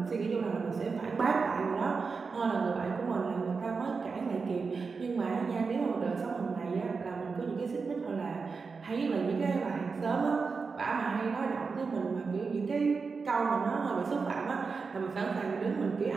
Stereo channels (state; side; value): quieter; left; 4.8 dB